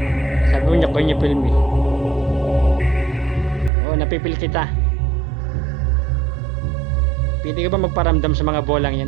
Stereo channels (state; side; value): drops out; left; at 3.7 s